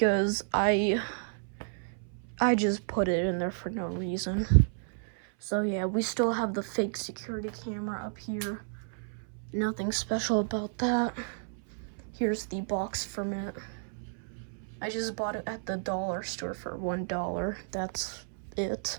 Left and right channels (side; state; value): left; silent; 57 dB below the other